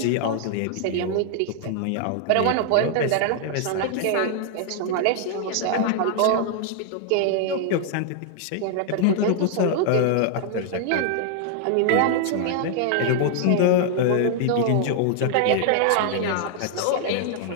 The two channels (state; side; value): different; both; correlation 0.00